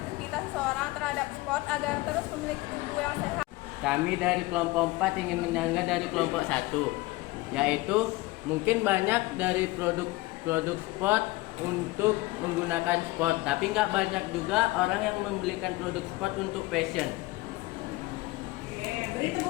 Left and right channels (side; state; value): right; quieter; 20.6 dB